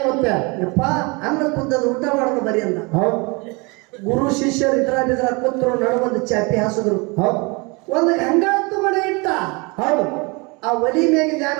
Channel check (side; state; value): left; quieter; 28.6 dB